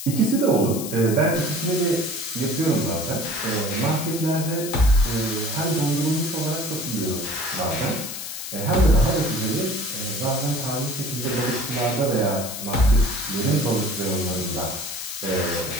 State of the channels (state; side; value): noise; left; hiss, 8 dB below the sound